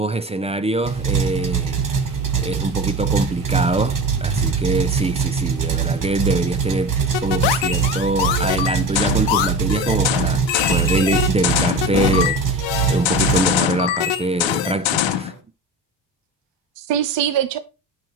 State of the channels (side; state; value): both; normal; correlation 0.29